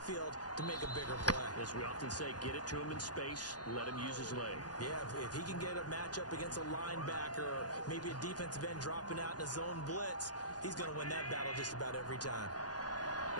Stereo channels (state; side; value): late; right; 0.69 ms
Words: to make a bigger play. As we often say, get it to him in space, let him use his leg. Yeah, if he can get a matchup against a linebacker or maybe a defensive end dropping out in a zone blitz, he's going to win that battle just about every time.